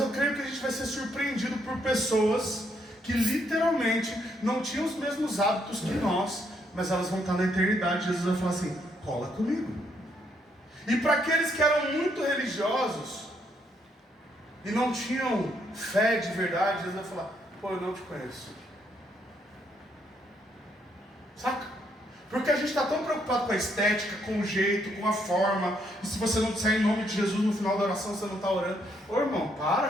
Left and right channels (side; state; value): both; normal; correlation 0.73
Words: creio que a gente vai ser surpreendido por pessoas que literalmente não tinham os mesmos hábitos que nós, mas elas vão estar na eternidade. Jesus vai falar assim: cola comigo. E para aqueles que eram muito religiosos e não tinham fé de verdade, Jesus vai falar: pô, eu não te conheço. Saca? Porque a gente está tão preocupado com a estética, com o jeito, com a forma. E se você não disser em nome de Jesus no final da oração, você não está orando. Ô irmão,